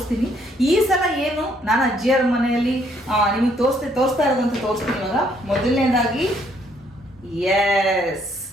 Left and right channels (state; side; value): normal; both; correlation 0.68